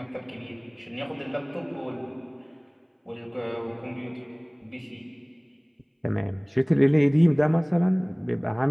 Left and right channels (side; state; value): both; identical; correlation 1.00